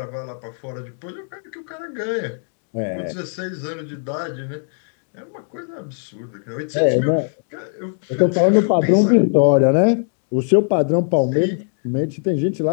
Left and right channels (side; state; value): right; silent; digital silence